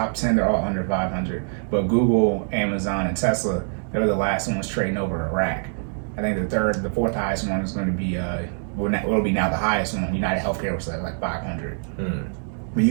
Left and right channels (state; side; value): silent; left; 63 dB below the other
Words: 10, they're all under 500. But Google, Amazon, and Tesla, they're the last ones trading over a rack. I think the fourth highest one is going to be will be now the highest one. United Healthcare was like 500. But